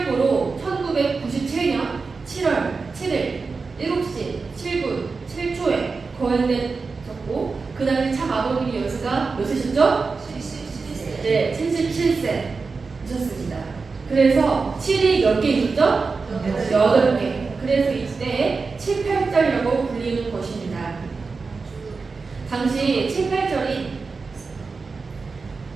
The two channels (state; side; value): quieter; left; 4.4 dB